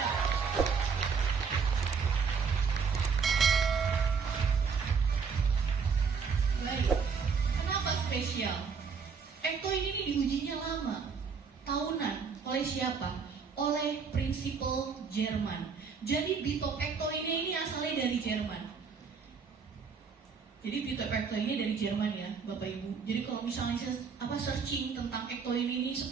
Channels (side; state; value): left; quieter; 5.7 dB